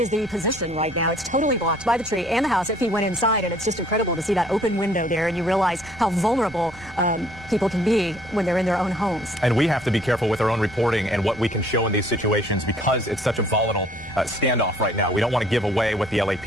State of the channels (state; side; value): noise; right; rumble, 20 dB below the sound